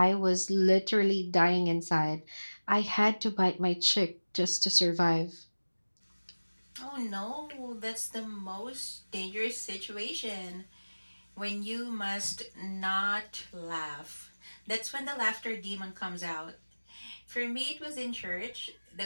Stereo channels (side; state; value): both; inverted; correlation -1.00